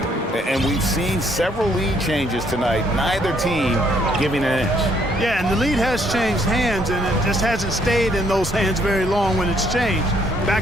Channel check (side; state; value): both; normal; correlation 0.68